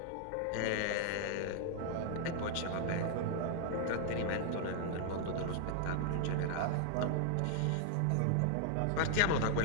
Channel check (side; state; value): both; different; correlation -0.01